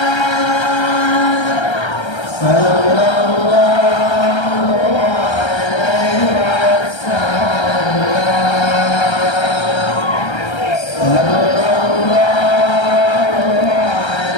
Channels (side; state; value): right; late; 1.3 ms